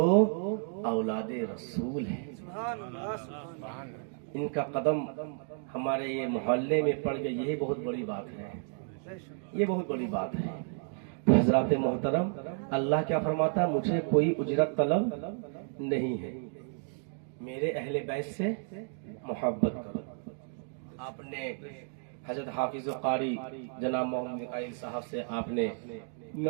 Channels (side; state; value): left; silent; 56 dB below the other